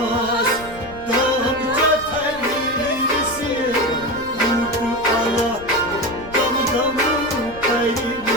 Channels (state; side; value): noise; left; rumble, 18 dB below the sound